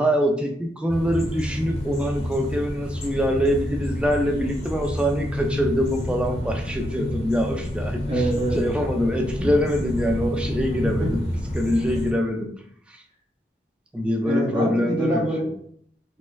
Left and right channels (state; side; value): normal; both; correlation 0.80